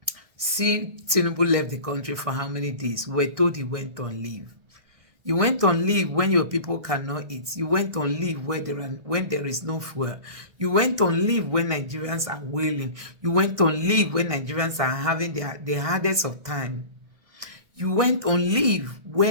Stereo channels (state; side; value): late; left; 1.6 ms